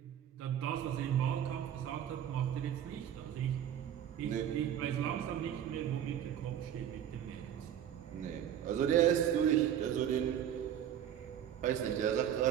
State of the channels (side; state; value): left; quieter; 10.1 dB